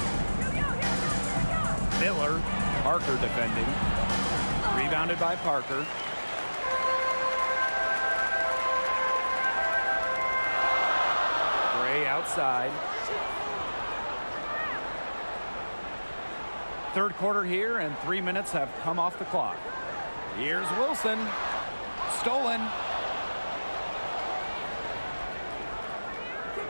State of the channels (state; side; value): inverted; both; correlation -1.00